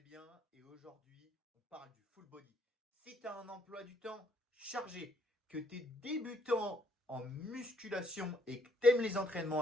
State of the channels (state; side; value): normal; both; correlation 0.68